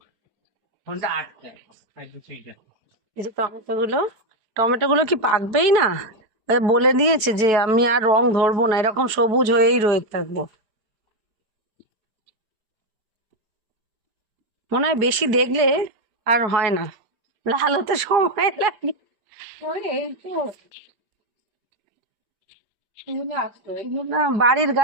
ফোনটা আটকে যায়। এই যে টমেটো গুলো কি পাকবেই না? বলে দিয়েছে যে আমি আর রং ধরবো না, এরকম সবুজ হয়েই রয়ে থাকবো। মনে হয় বেশি দেখলে আর হয় না, লাল হতে সময় লাগে। না, বাড়ির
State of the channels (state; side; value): late; left; 4.8 ms